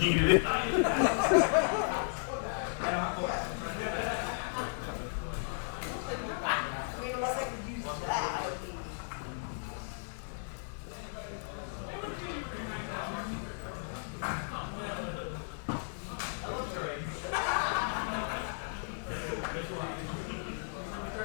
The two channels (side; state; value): right; silent; digital silence